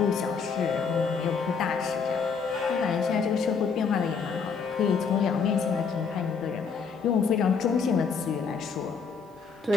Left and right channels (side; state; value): right; quieter; 5.7 dB